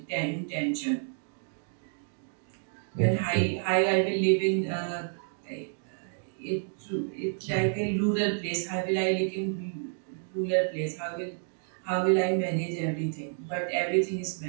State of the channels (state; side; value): silent; left; digital silence